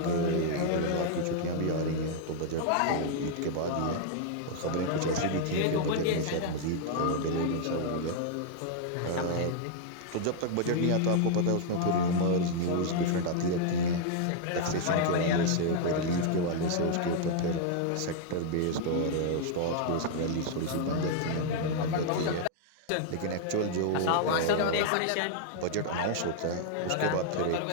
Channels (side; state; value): both; different; correlation 0.00